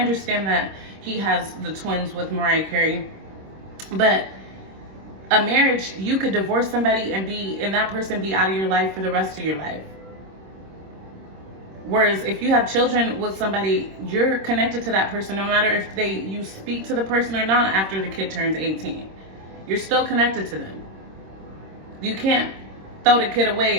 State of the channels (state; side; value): late; left; 26 ms